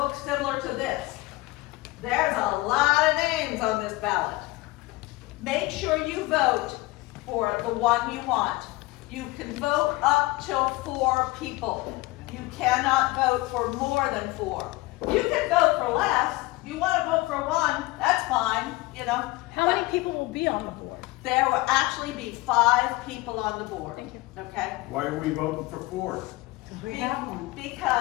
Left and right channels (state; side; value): quieter; right; 20.7 dB